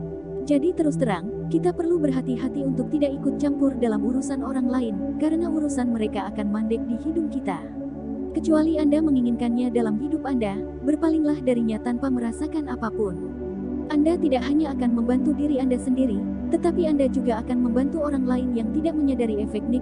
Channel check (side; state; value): left; noise; rumble, 28 dB below the sound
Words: Jadi terus terang, kita perlu berhati-hati untuk tidak ikut campur dalam urusan orang lain, karena urusan mereka akan mandek di hidung kita. Kecuali Anda menginginkannya dalam hidup Anda, berpalinglah darinya tanpa merasakan apapun. Anda tidak hanya akan membantu diri Anda sendiri, tetapi Anda juga akan membantu orang lain yang tidak menyadari efek